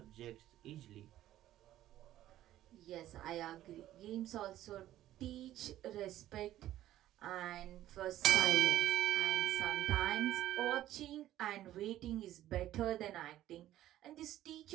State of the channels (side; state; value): left; quieter; 13.5 dB